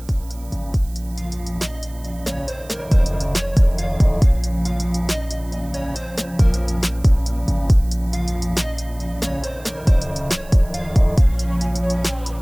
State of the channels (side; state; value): right; noise; hiss, 23 dB below the sound